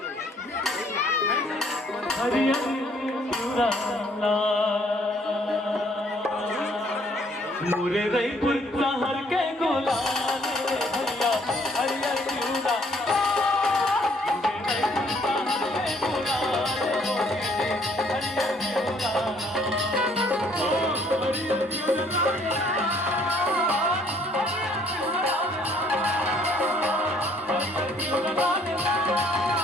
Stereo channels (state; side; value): normal; both; correlation 0.63